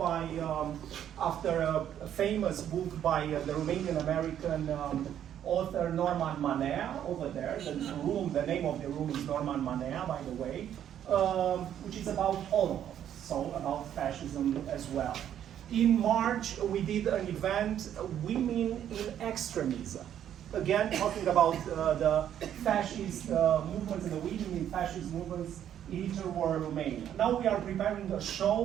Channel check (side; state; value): left; quieter; 10.2 dB